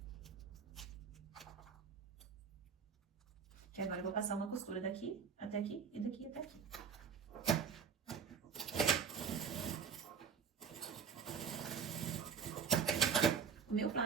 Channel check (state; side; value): quieter; left; 6.5 dB